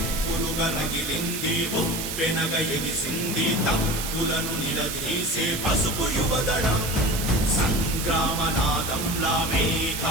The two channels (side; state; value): right; noise; hiss, 5 dB below the sound